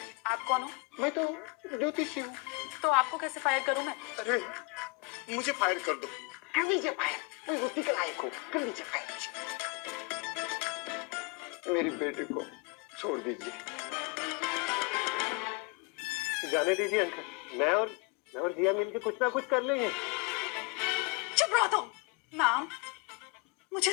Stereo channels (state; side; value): quieter; right; 28.2 dB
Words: आप कौन हो? मैं तो ज्योतिषी हूँ। तो आपको कैसे फायर करूं मैं? अरे मुझे फायर कर दो। कर दीजिए फायर, मैं रोटी के लायक हूँ। कर दीजिए फायर। मेरे बेटे को छोड़ दीजिए। जाने दीजिए अंकल, मैं और जिया मिलके कुछ ना कुछ कर लेंगे। चुप रहो तुम। मैम,